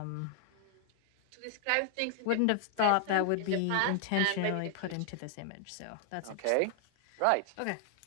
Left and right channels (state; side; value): different; both; correlation 0.00